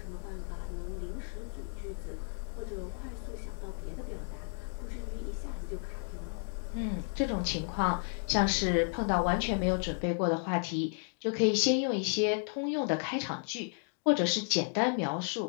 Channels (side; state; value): right; silent; 56 dB below the other